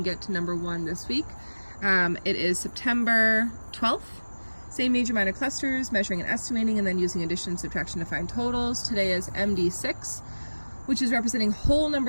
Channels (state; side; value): inverted; both; correlation -1.00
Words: get to number 1 this week. It is September 12th. Same major minor clusters, measuring and estimating, and then using addition and subtraction to find totals. Today is MD6, which is representing whole